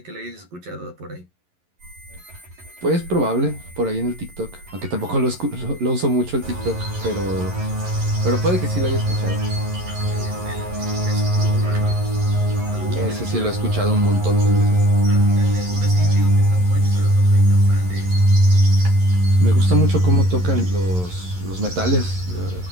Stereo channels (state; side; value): late; left; 11 ms